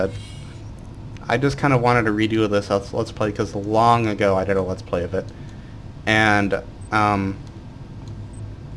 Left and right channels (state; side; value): identical; both; correlation 1.00